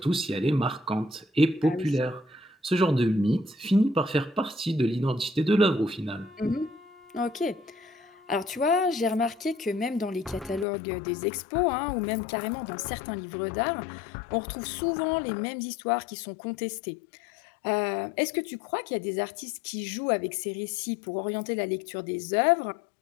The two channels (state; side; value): drops out; right; at 10.7 s